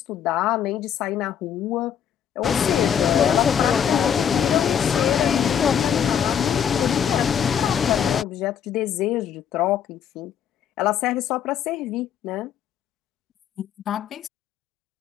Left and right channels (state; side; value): quieter; right; 8.6 dB